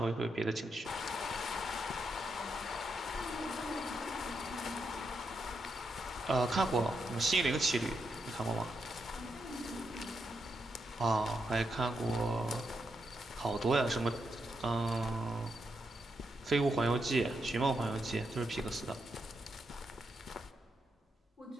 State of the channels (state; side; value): normal; both; correlation 0.82